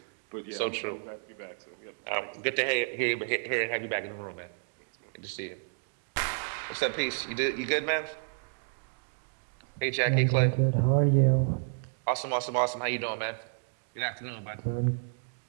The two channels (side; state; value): left; silent; digital silence